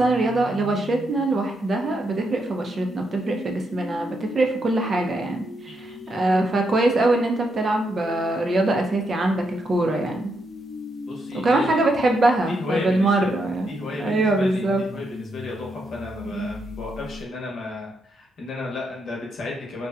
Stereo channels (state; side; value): normal; both; correlation 0.80